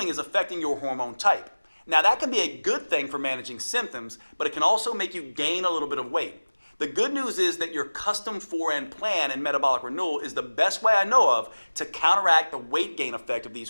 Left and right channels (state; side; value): inverted; both; correlation -1.00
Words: is affecting your hormone type. Now, that can be a good thing for managing symptoms, but it can also make you gain a little bit of weight. The good news is that your custom 4N plan in Metabolic Renewal is the best way I know of to counteract the weight gain effect of these